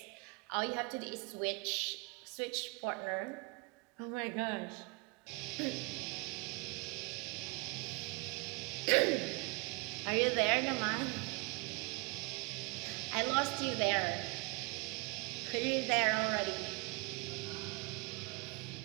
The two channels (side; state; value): left; quieter; 29.0 dB